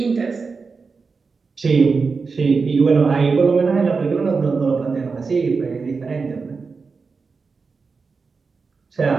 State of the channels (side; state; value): left; quieter; 4.7 dB